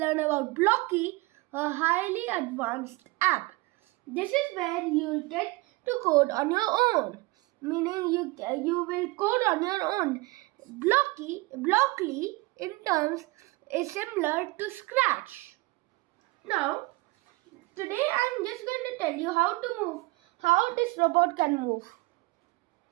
about Blocky, a highly advanced app. This is where you will get to code on your own, meaning you will code on your own. Blockly in terms is similar to Scratch. Now, today I am just going to tell you how this robot can move.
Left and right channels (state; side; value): quieter; left; 22.9 dB